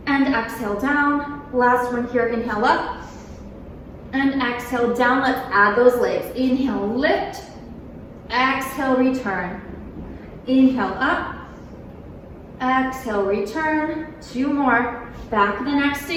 And exhale down. Last one here. Inhale up. And exhale down. Let's add those legs. Inhale, lift. Exhale, return. Inhale up. Exhale, return. 2 more. Back of the neck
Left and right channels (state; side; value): identical; both; correlation 1.00